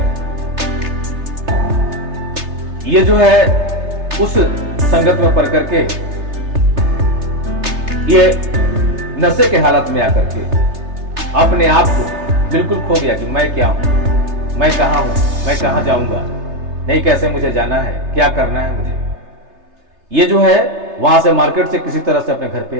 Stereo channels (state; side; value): late; left; 3.3 ms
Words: ये जो है उस संगत में पड़ करके ये नशे के हालत में आकर के अपने आप को बिल्कुल खो गया कि मैं क्या हूं, मैं कहां हूं, मैं कहां जाऊंगा, नहीं कैसे मुझे जाना है, क्या करना है मुझे। ये जो है वहां से मार्केट से किसी तरह से अपने घर पे